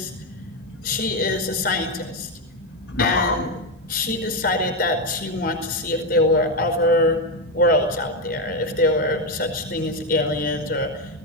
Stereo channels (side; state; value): both; normal; correlation 0.08